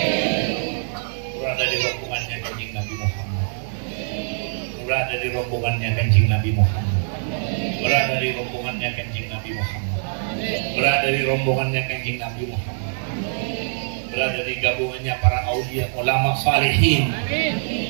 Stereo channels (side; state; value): left; silent; digital silence